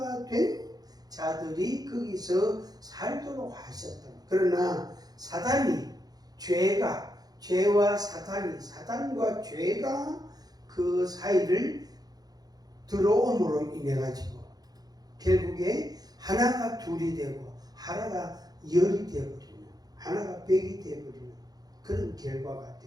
된 자들이 거기서 살도록 하셨다. 그러나 사단과 죄가 그 사이를 들어옴으로 인해 가지고 결국에 하나가 둘이 되고 하나가 열이 되어버리는, 하나가 백이 되어버리는 그런 결과가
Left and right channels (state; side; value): late; left; 0.19 ms